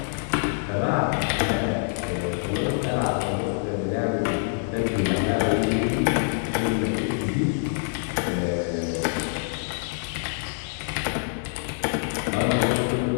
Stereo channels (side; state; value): right; silent; 61 dB below the other